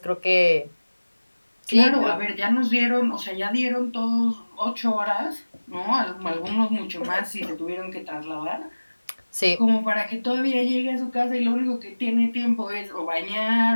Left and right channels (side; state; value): both; inverted; correlation -1.00